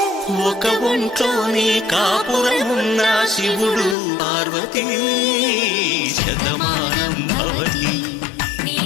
ఒక ఒంట్లోనే కాపురమున్న శివుడు పార్వతీ శతమానం భవతి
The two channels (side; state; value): right; drops out; at 4.0 s